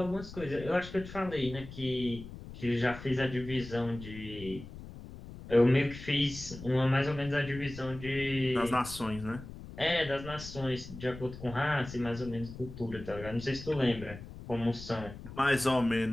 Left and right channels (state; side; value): noise; left; rumble, 13 dB below the sound